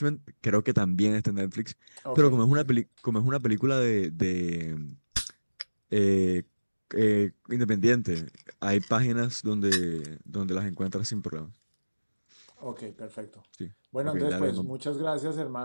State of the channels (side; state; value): both; inverted; correlation -1.00